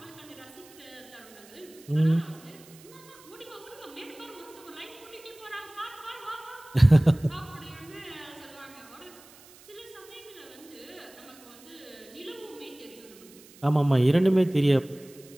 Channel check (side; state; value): right; noise; hiss, 23 dB below the sound